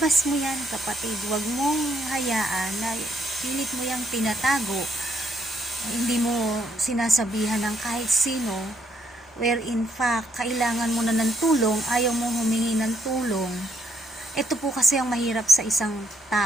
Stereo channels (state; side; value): normal; both; correlation 0.72